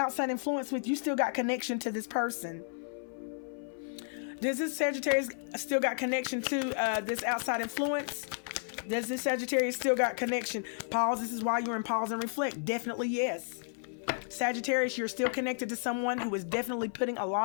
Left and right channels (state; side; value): silent; right; 56 dB below the other